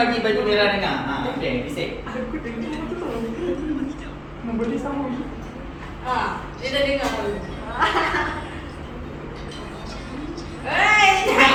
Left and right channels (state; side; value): identical; both; correlation 1.00